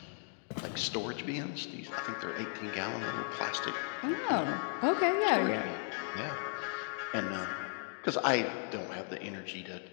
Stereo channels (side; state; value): right; silent; 54 dB below the other